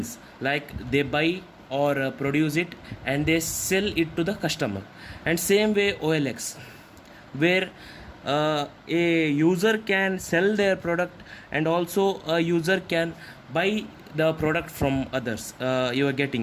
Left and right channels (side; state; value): both; identical; correlation 1.00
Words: like they buy or produce it and they sell it to the customer. And same way OLX, where a user can sell their product and also a user can buy the product from others. You are